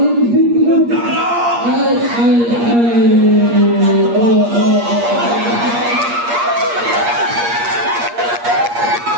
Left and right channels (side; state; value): left; late; 8.5 ms